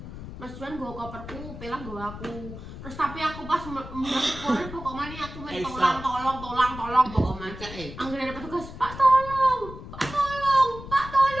Mas Juan nggo koperku, pelah nggo aku. Terus tapi aku pas mulai pokoknya aku main tolong pokoknya. Anggere ada petugas, Pak tolong.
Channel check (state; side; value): noise; left; rumble, 12 dB below the sound